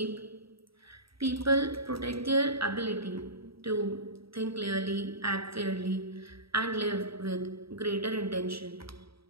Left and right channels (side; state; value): left; late; 0.76 ms